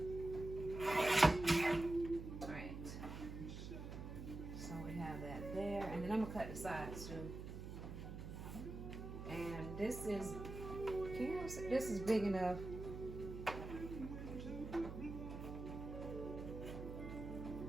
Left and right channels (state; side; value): noise; right; hum, 8 dB below the sound